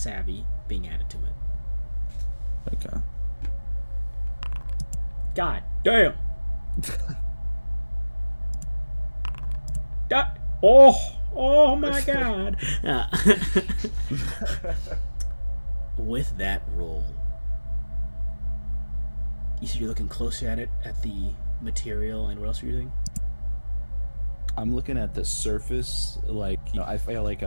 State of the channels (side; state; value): both; inverted; correlation -1.00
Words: savvy being added to it. Okay. God damn! Oh my god! With that roll, you said you're looking closer at it, at the material, and what else are you doing? I'm looking at the surface, like, you know, I feel like